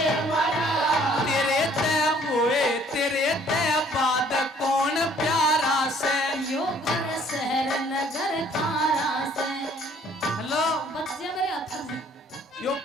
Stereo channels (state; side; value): normal; both; correlation 0.59